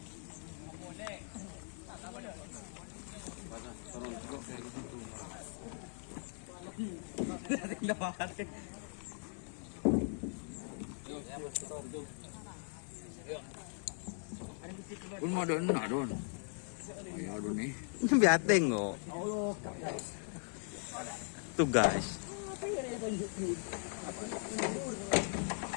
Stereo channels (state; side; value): silent; right; 52 dB below the other